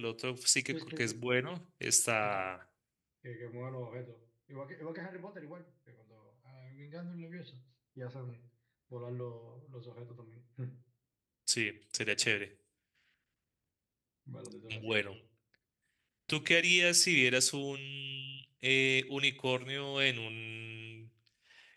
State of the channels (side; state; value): both; identical; correlation 1.00